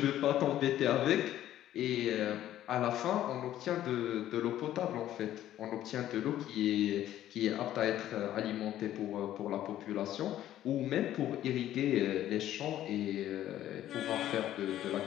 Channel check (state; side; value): quieter; right; 12.6 dB